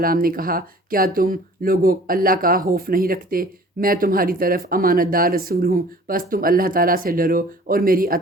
نے کہا، کیا تم لوگوں اللہ کا خوف نہیں رکھتے؟ میں تمہاری طرف امانت دار رسول ہوں، بس تم اللہ تعالیٰ سے ڈرو اور میری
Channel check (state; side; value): normal; both; correlation 0.49